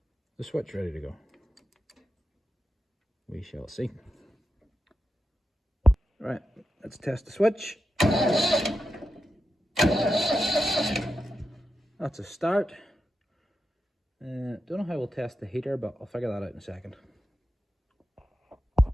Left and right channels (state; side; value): normal; both; correlation 0.89